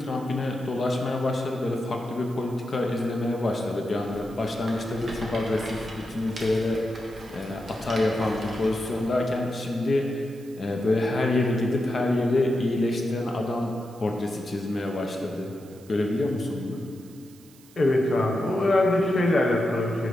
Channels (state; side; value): noise; right; hiss, 26 dB below the sound